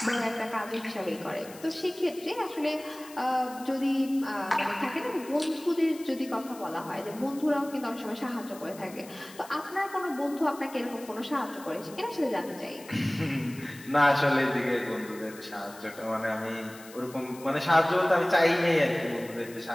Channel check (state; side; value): noise; left; hiss, 19 dB below the sound